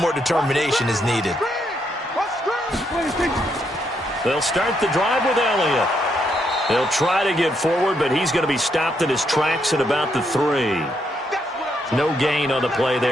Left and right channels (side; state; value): both; normal; correlation 0.77